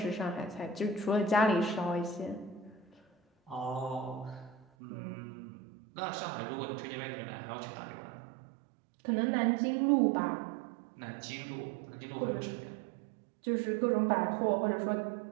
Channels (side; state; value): left; drops out; at 4.7 s